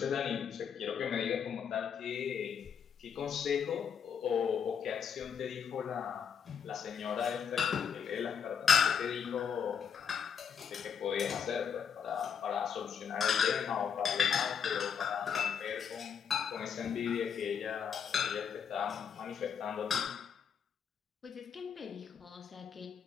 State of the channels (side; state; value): right; quieter; 7.4 dB